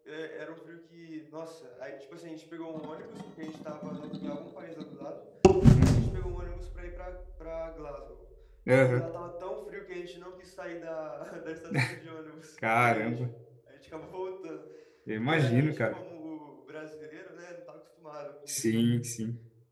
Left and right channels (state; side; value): identical; both; correlation 1.00